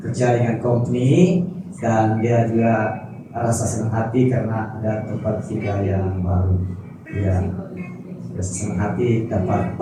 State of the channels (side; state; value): both; identical; correlation 1.00